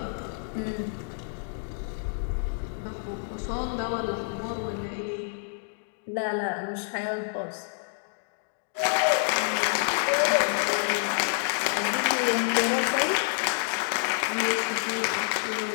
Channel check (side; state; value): right; silent; digital silence